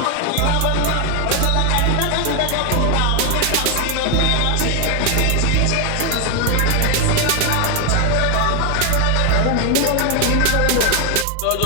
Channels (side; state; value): both; different; correlation 0.01